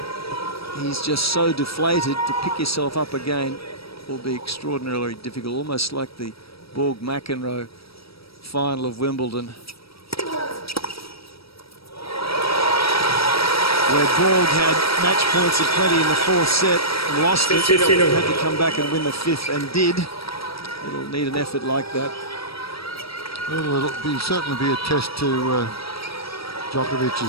he's just so deflated. To pick yourself up again will be extraordinarily difficult, almost like the Borg-McEnroe final of Wimbledon, where Borg had match points at plenty in the fourth set and lost it. Had to come back and win the fifth, and did. It'll need an effort like that. Well, it'll certainly be a test to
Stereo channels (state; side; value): late; right; 0.76 ms